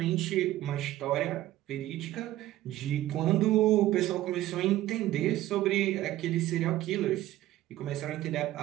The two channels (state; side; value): quieter; left; 14.9 dB